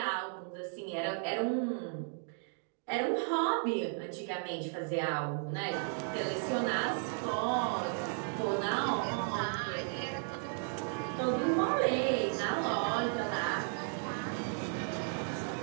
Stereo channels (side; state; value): left; silent; 55 dB below the other